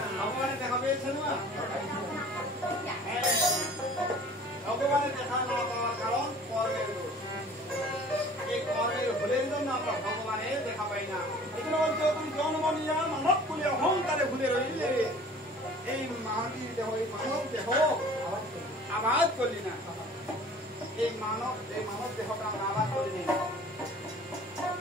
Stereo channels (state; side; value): normal; both; correlation 0.47